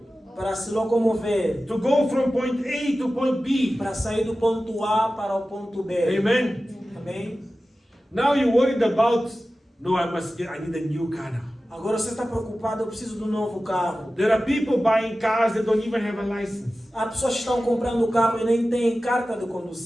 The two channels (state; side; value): normal; both; correlation 0.95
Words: Para se locomover. to go from point A to point B. Para sair do ponto A para o ponto B. Amen. Amém? Now you're worried about, no, I need a new car now. Agora você está preocupado, eu preciso de um novo carro. There are people buying cars that don't even have a license. Há pessoas que estão comprando carro e nem têm carta de